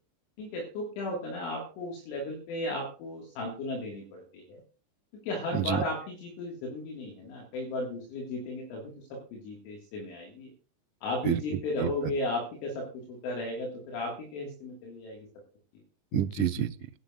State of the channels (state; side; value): late; right; 20 ms